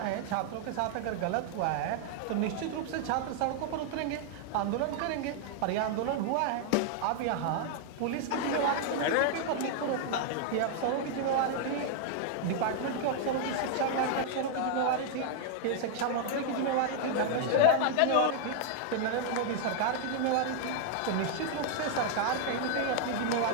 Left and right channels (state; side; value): different; both; correlation 0.00